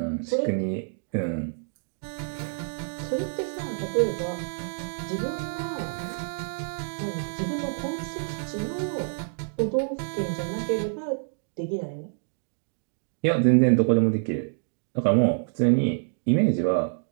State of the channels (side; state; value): left; silent; digital silence